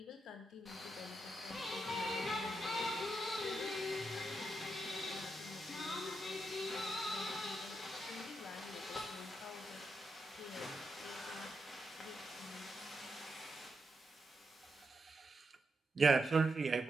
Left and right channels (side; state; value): both; normal; correlation 0.84